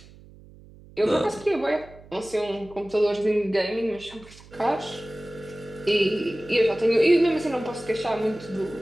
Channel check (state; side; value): noise; right; hum, 22 dB below the sound